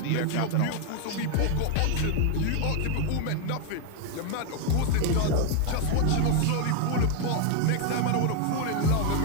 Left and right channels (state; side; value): different; both; correlation 0.01